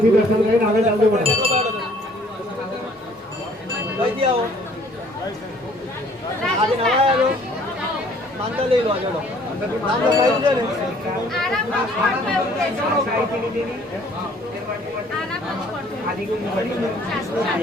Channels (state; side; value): normal; both; correlation 0.58